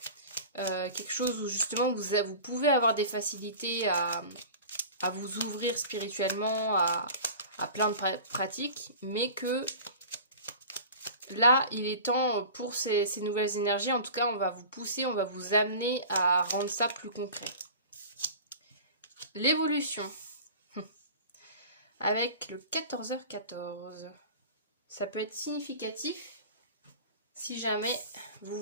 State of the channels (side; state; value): both; inverted; correlation -0.38